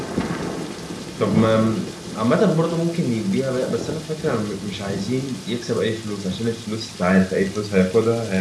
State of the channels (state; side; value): identical; both; correlation 1.00